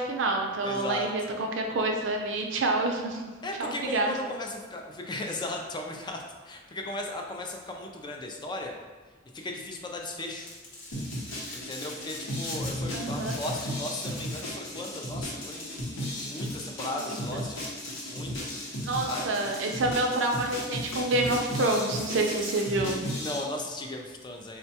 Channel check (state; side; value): normal; both; correlation 0.11